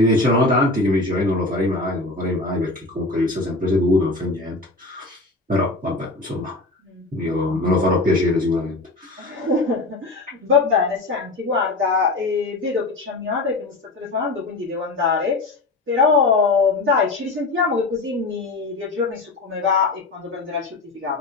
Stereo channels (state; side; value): quieter; right; 3.2 dB